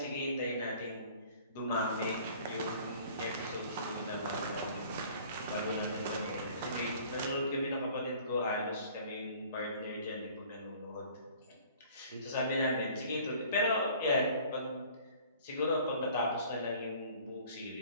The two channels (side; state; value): both; inverted; correlation -0.51